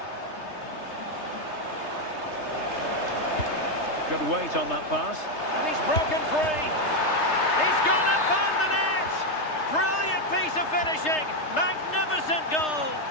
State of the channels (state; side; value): late; right; 3.3 ms